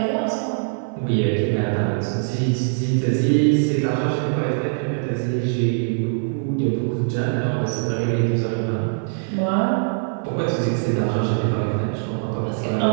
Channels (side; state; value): left; silent; 56 dB below the other